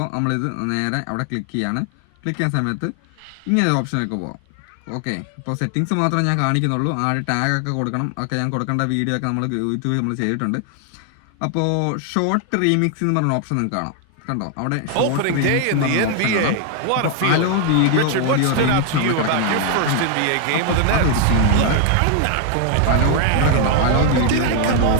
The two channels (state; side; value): different; both; correlation 0.01